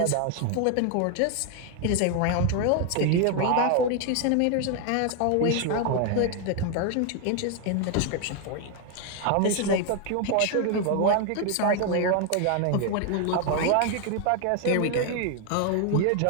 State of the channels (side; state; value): both; different; correlation 0.01